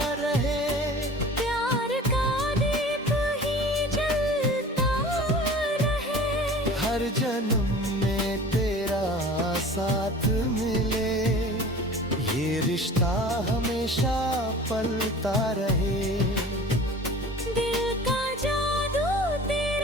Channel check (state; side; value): normal; both; correlation 0.42